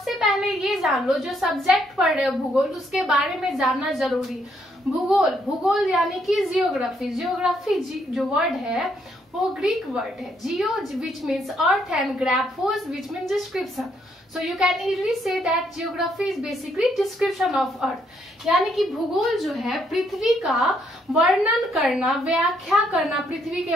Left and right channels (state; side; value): normal; both; correlation 0.72